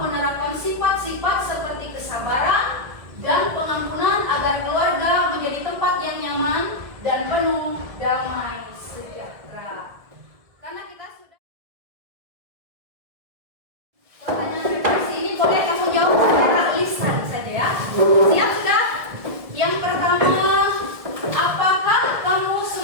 sifat-sifat seperti kesabaran dan pengampunan agar keluarga menjadi tempat yang nyaman dan penuh damai sejahtera. Karena kita sudah pertanyaan refleksi ini boleh kamu jawab secara lisan saja ya. Siap sudah? Yang pertama, apakah kamu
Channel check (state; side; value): late; left; 1.7 ms